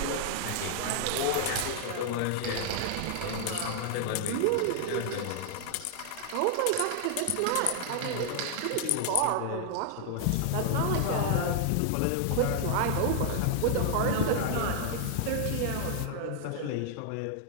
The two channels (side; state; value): both; different; correlation 0.00